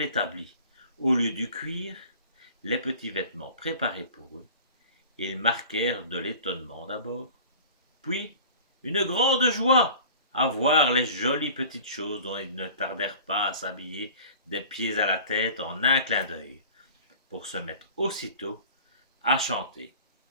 au lieu du cuir, les petits vêtements préparés pour eux, ils marquèrent de l'étonnement d'abord, puis une grande joie à voir les jolies petites choses dont ils ne tardèrent pas à s'habiller des pieds à la tête en un clin d'œil, pour se mettre aussitôt à chanter.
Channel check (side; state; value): both; inverted; correlation -0.42